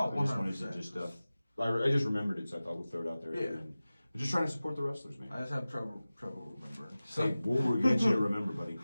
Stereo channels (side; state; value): both; inverted; correlation -0.96